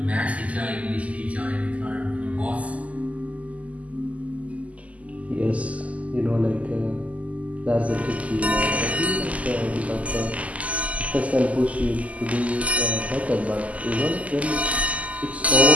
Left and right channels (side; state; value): left; late; 0.070 ms